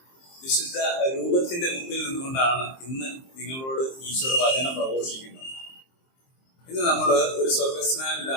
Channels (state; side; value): late; right; 23 ms